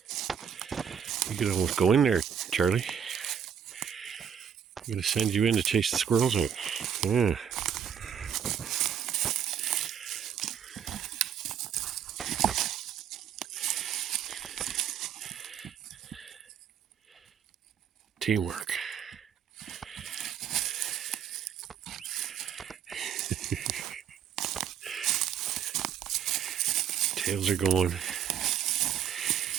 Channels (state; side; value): quieter; left; 8.3 dB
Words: You could almost go in there, Charlie. I'm going to send you in to chase the squirrels out. Yeah. Teamwork. Tails are going.